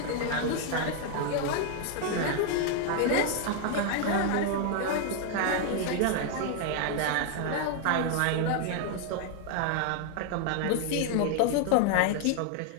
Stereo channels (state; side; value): different; both; correlation 0.00